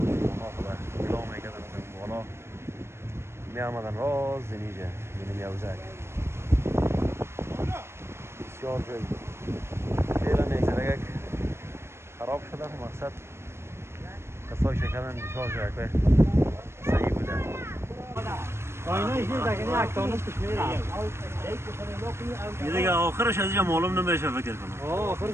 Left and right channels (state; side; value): late; left; 0.12 ms